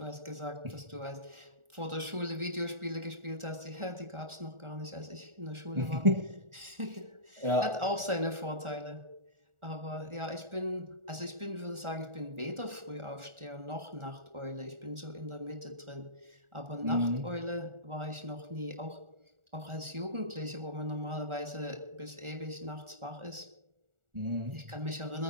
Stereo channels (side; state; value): left; late; 1.4 ms